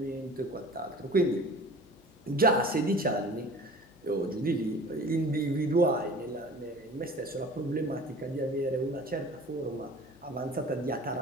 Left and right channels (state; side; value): noise; left; hum, 27 dB below the sound